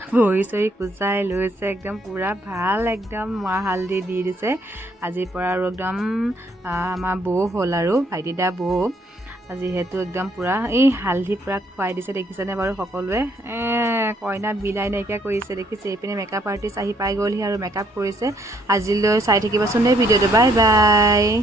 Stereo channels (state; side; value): normal; both; correlation 0.68